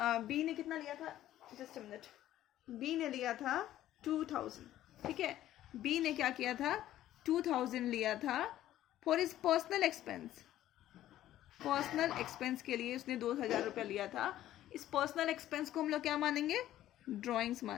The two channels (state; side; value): quieter; right; 13.2 dB